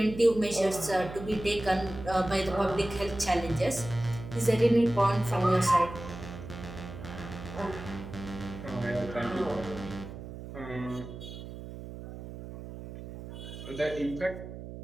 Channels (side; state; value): right; noise; hum, 11 dB below the sound